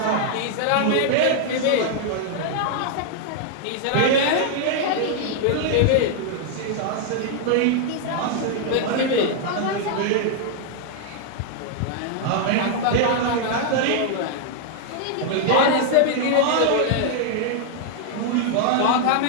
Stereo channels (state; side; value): different; both; correlation 0.00